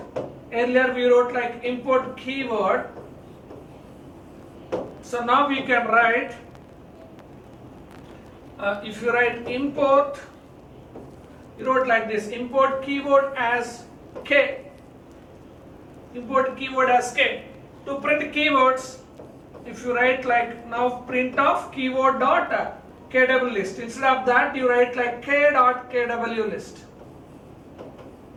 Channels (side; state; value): both; identical; correlation 1.00